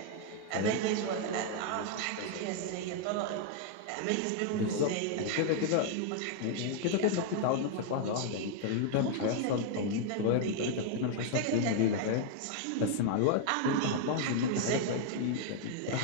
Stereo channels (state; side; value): different; both; correlation 0.00